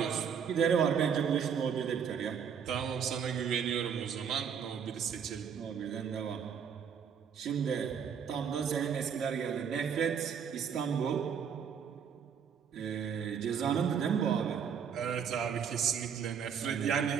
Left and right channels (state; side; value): quieter; left; 7.4 dB